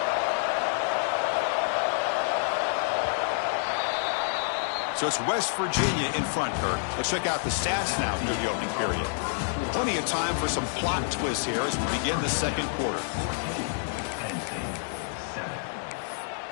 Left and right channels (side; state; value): right; silent; digital silence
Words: So it's West Virginia in front, Kurt. Let's check out the stats now through the opening period. Plenty of time for some plot twists here as we begin the second quarter.